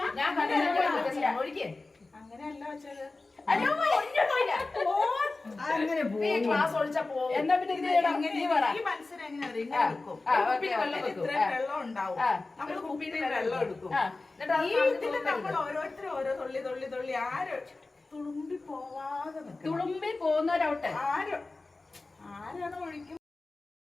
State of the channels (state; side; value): quieter; right; 3.4 dB